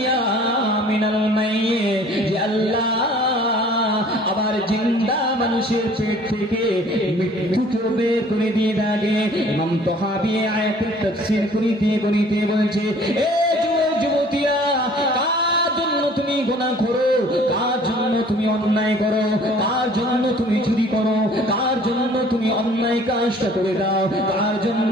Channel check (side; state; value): both; normal; correlation 0.53